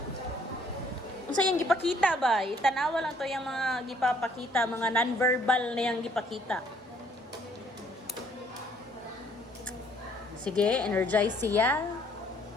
Unsay yang gipakita ba? Itanawa lang to yung mga gipapakita, mga non-verbal na yang gipakita. Sige, energize siya.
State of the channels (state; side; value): normal; both; correlation 0.63